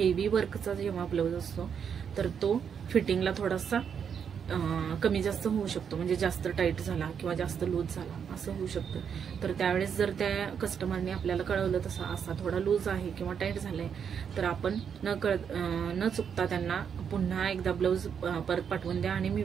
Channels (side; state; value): left; quieter; 7.4 dB